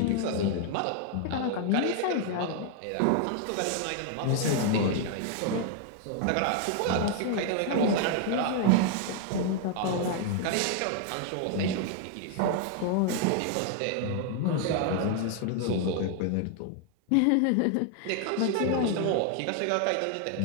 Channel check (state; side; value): different; both; correlation 0.00